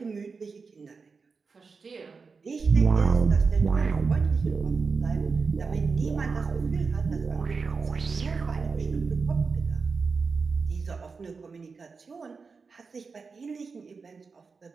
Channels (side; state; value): left; quieter; 4.8 dB